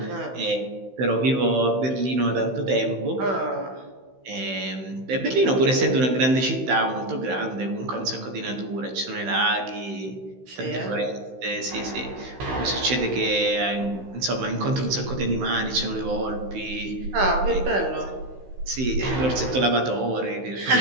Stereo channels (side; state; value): left; late; 16 ms